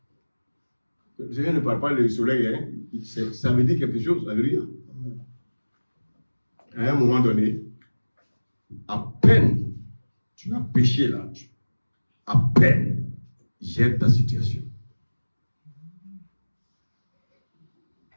Le Seigneur ne parle pas du soleil, hein? Ça veut dire quelque chose. Alléluia. À un moment donné, à peine tu as péché là, à peine gère ta situation.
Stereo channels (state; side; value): inverted; both; correlation -1.00